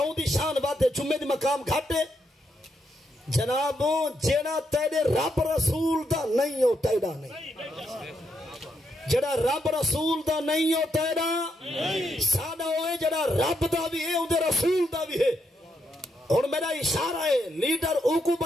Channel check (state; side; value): normal; both; correlation 0.80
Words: دی شان بات ہے جمعے دی مقام گھاٹے جنابوں جیڑا تیرے رب رسول دا نہیں ہو تیرا نہیں جڑا رب رسول دا نہیں ہو تیرا سادہ ہوئے جڑا رب دا بھی ہے اندھے رسول دا بھی ہے اور میرا اشارہ ہے لیڈر اوکو